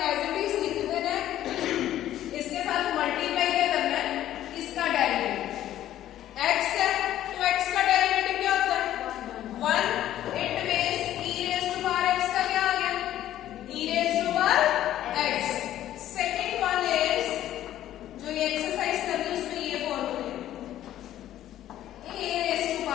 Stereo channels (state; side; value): quieter; right; 12.6 dB